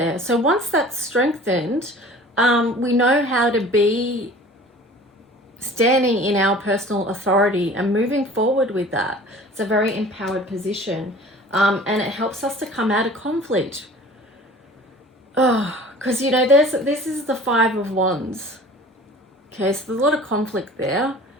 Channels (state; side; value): normal; both; correlation 0.44